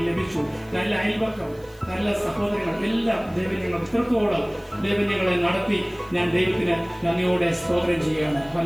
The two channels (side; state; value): right; noise; hiss, 27 dB below the sound